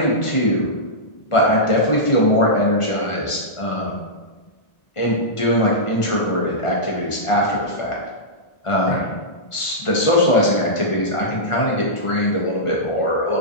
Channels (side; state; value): right; late; 1.5 ms